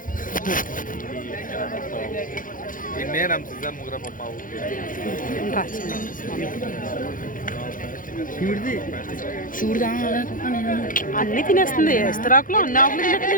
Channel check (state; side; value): late; right; 0.39 ms